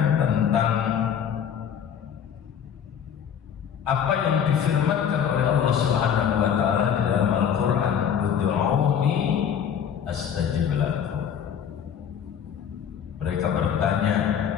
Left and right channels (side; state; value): right; quieter; 8.3 dB